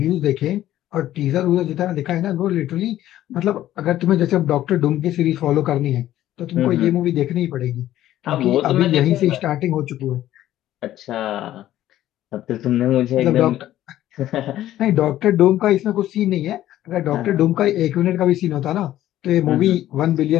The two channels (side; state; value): right; quieter; 13.4 dB